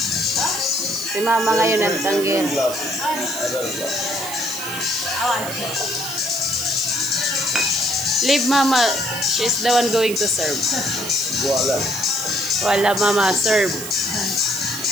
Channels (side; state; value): right; noise; hiss, 9 dB below the sound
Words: Si mama ngayon ang tanggir. Leave mama. She's the one going to serve. Wala mama, serve.